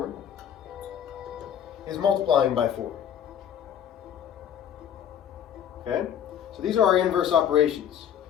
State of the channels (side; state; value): right; quieter; 9.3 dB